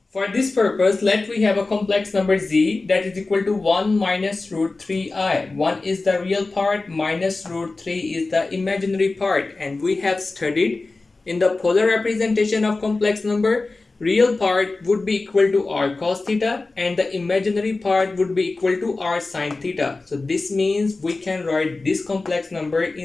For this purpose, let we have a complex number z that is equal to 1 minus root 3i. 1 is the real part, minus root 3 is the imaginary part, and we have studied in the polar representation of complex number, real part would be equal to r cos theta and the imaginary part would be equal to r sin theta. So this means we can write this complex number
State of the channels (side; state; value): right; quieter; 3.5 dB